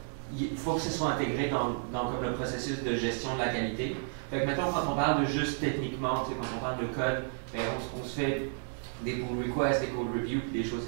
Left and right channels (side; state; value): left; silent; 56 dB below the other